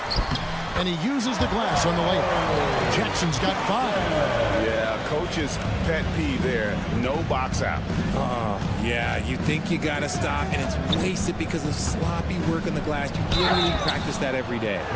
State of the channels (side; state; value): both; identical; correlation 1.00